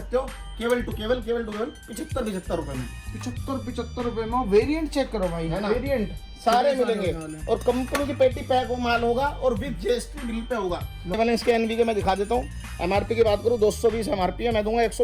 हो केवल टू केवल 75 रुपए में। 75 रुपए में वेरिएंट चेक करो भाई, है ना? वेरिएंट सारे मिलेंगे और कंपनी की पेटी पैक वो माल होगा और विद GST बिल पे होगा। पहले इसके NB मैं दिखा देता हूँ। MRP की बात करूँ 220 MRP है, मैं दूंगा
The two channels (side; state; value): both; identical; correlation 1.00